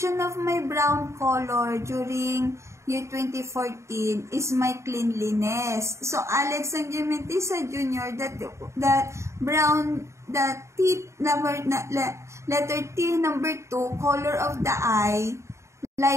of my brown color during year 2014 is my cleanliness. So Alex Sangimentisa Jr., that brown, that T number, letter T number 2, color of the eye,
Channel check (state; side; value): late; left; 0.14 ms